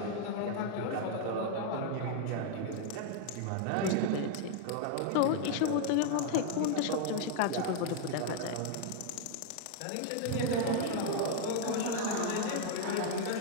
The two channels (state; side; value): different; both; correlation 0.00